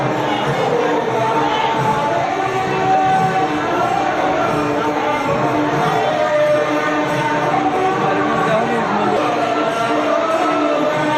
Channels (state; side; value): identical; both; correlation 1.00